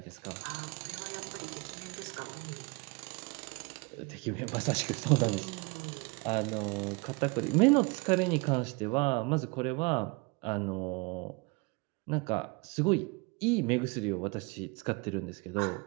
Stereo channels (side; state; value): left; quieter; 27.6 dB